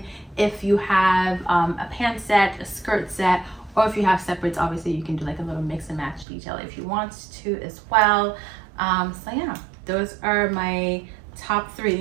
If you have a pant set, a skirt set, or if you have separates, obviously you can do a little mix and match detail if you want to as well. So yeah, those are my top 3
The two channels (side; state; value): left; drops out; at 6.2 s